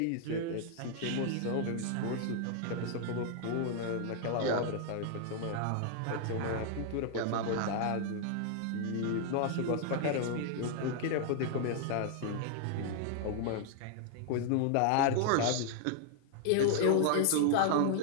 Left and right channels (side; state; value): both; different; correlation 0.00